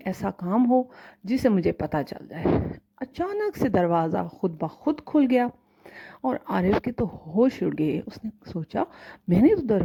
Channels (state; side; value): identical; both; correlation 1.00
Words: ایسا کام ہو جسے مجھے پتہ چل جائے۔ اچانک سے دروازہ خود بخود کھل گیا اور عارف کے تو ہوش اڑ گئے۔ اس نے سوچا میں نے تو